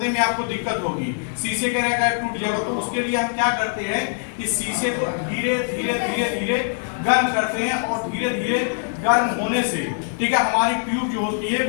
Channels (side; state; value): right; silent; digital silence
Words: में आपको दिक्कत होगी, शीशे के रहेगा टूट जाएगा। तो उसके लिए हम क्या करते हैं, इस शीशे को धीरे धीरे गर्म करते हैं और धीरे धीरे गर्म होने से, ठीक है, हमारी ट्यूब जो होती